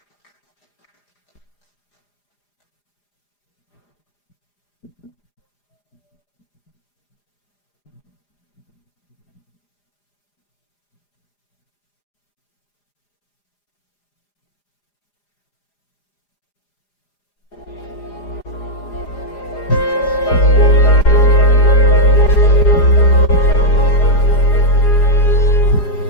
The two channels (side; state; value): right; late; 4.9 ms